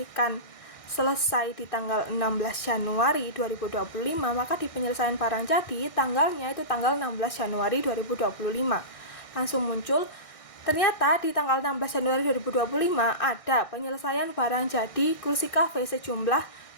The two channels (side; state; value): right; late; 1.6 ms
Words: selesai di tanggal 16 Januari 2025, maka di penyelesaian barang jadi tanggalnya itu tanggal 16 Januari 2025. Langsung muncul, ternyata di tanggal 16 Januari 2025 ada penyelesaian barang jadi kursi kafe sejumlah